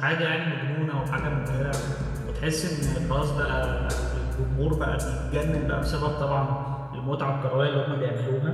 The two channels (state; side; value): identical; both; correlation 1.00